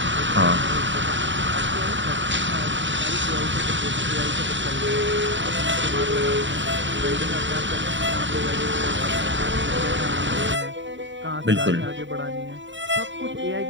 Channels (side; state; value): left; late; 0.54 ms